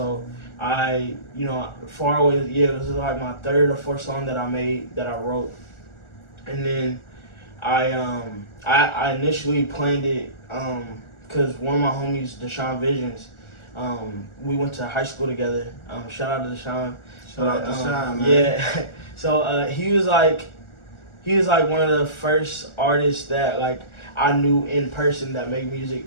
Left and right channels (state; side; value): late; right; 1.4 ms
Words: I, you know, Far Away, yeah, it was like my third or fourth song that I made, that I wrote. And then I initially planned it because one of my homies, Deshaun Visions, we went to high school together. Shout out to Deshaun. Shout out to Deshaun, man. Yeah. So he was like one of the first artists that like I knew in person that made